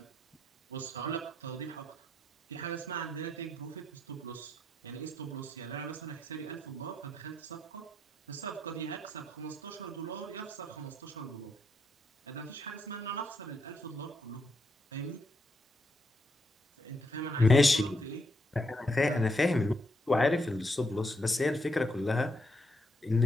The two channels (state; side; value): normal; both; correlation 0.78